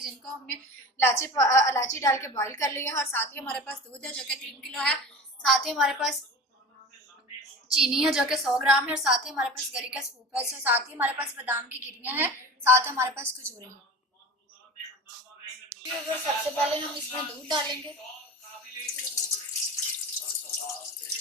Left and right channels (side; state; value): both; normal; correlation 0.34